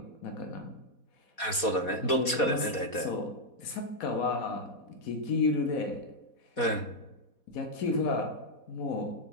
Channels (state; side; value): late; right; 4.2 ms